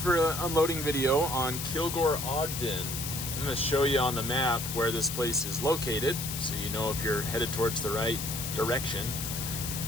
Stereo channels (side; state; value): left; noise; hiss, 5 dB below the sound